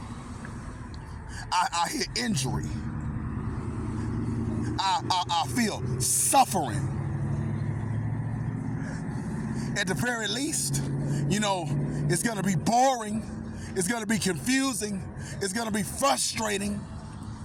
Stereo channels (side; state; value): both; identical; correlation 1.00